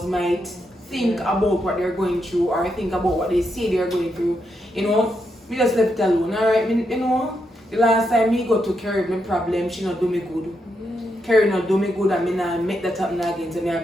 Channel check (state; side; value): normal; both; correlation 0.82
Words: might think about what they're going through or think about what they say they're going through. You know, we just left it alone, alright? You know, the last time me go to Carrie my problem, she not do me good. Carrie not do me good and me not make that happen again. So me I